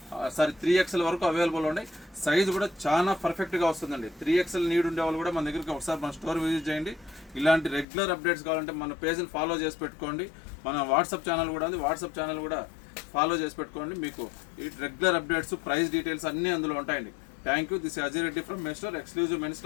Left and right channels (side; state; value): right; drops out; at 7.9 s